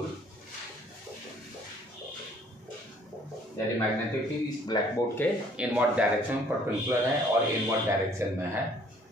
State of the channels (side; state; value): both; normal; correlation 0.59